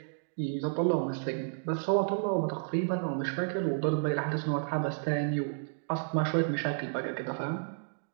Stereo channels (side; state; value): left; silent; digital silence